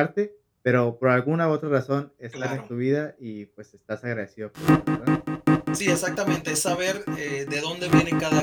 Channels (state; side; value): identical; both; correlation 1.00